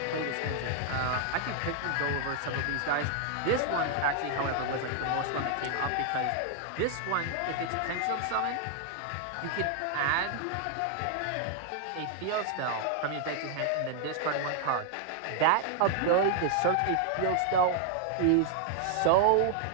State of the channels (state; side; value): different; both; correlation 0.00